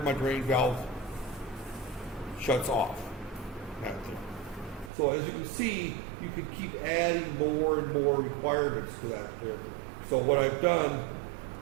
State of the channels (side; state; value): left; drops out; at 4.9 s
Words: my drain valve shuts off. So as you can see, you can keep adding more and more requirements to that there. So what I've done